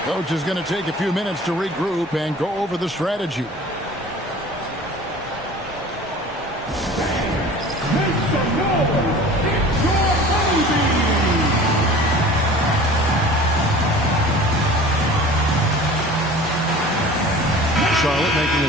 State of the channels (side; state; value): both; normal; correlation 0.42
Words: Coach is going to take a few minutes to regroup and go over the strategy. Charlotte making